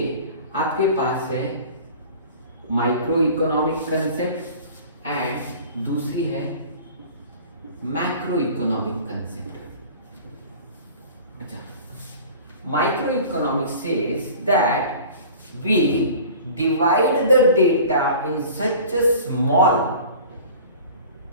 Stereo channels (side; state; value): both; inverted; correlation -0.43